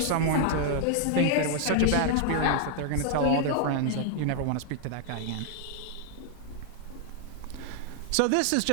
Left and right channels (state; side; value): different; both; correlation 0.00